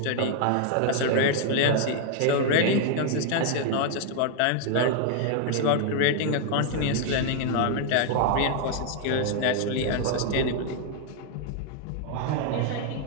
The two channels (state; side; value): different; both; correlation 0.00